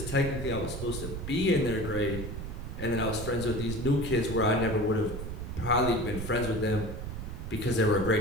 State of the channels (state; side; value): noise; right; rumble, 6 dB below the sound